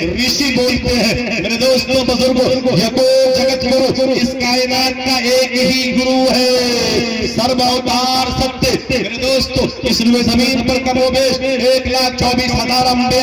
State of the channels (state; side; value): identical; both; correlation 1.00